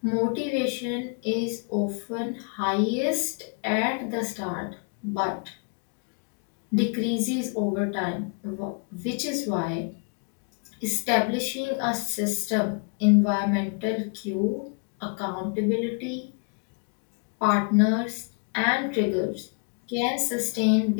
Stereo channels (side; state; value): right; quieter; 38.5 dB